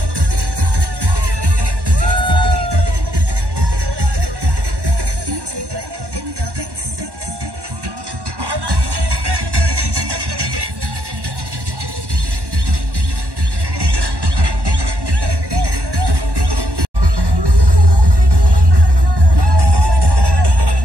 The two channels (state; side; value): late; left; 1.1 ms